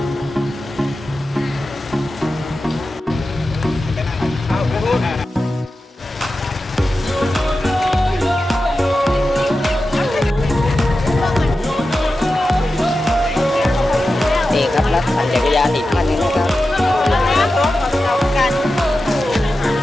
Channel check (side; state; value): both; normal; correlation 0.92